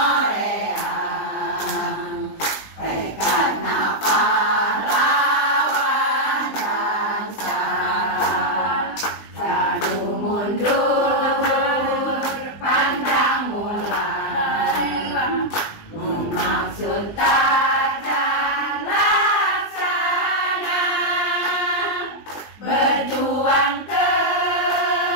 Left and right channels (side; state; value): right; late; 20 ms